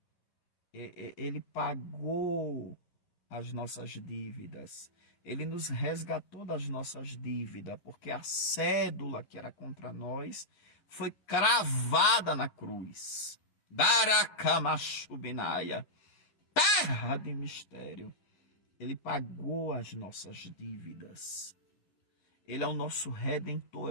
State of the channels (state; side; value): late; right; 10 ms